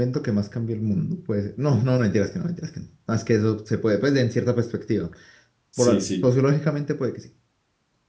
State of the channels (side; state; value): both; identical; correlation 1.00